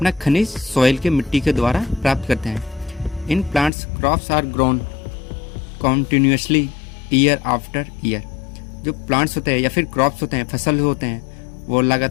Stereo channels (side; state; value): right; drops out; at 3.7 s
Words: खनिज सॉइल के मिट्टी के द्वारा प्राप्त करते हैं। In plants crops are grown continuously year after year. जो प्लांट्स होते हैं या फिर क्रॉप्स होते हैं, फसल होते हैं, वो